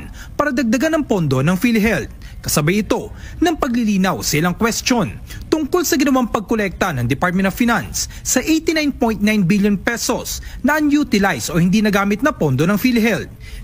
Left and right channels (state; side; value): identical; both; correlation 1.00